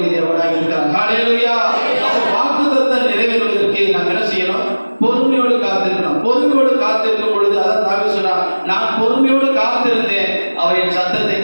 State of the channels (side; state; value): both; inverted; correlation -1.00